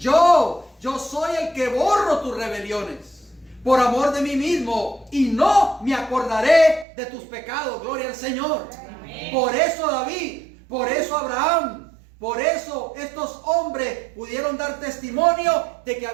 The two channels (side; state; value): left; drops out; at 6.9 s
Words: soy el que borro tus rebeliones por amor de mí mismo, y no me acordaré de tus pecados. Gloria al Señor. Amén. Por eso David, por eso Abraham, por eso estos hombres pudieron dar testimonio de que